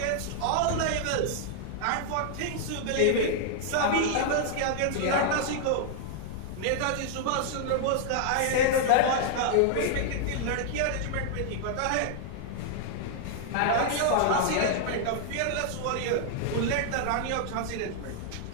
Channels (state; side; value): different; both; correlation -0.01